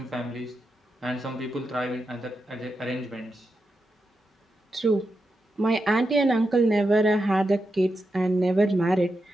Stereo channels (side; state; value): both; normal; correlation 0.87